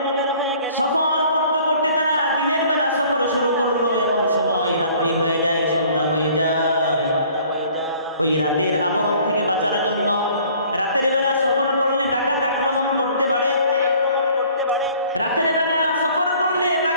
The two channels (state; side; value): inverted; both; correlation -0.54